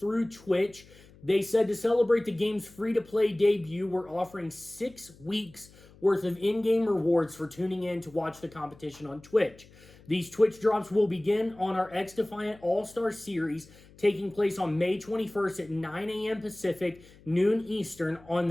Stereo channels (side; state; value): left; noise; hum, 24 dB below the sound